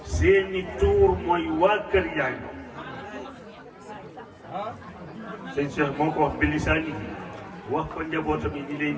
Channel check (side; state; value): both; identical; correlation 1.00